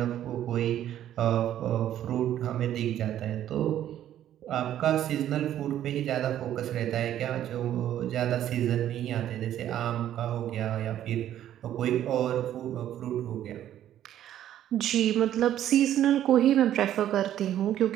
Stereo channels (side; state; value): left; quieter; 11.6 dB